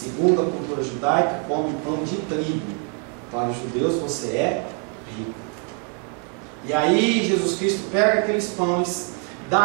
a cultura judaica, come pão de trigo. Para os judeus você é rico. E aí Jesus Cristo pega aqueles pães,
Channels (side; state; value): left; quieter; 37.5 dB